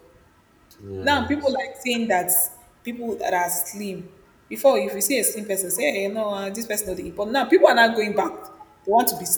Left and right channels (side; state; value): both; identical; correlation 1.00